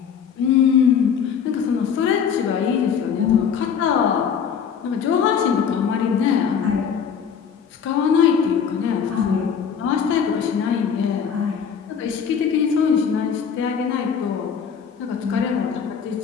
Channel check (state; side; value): quieter; right; 7.2 dB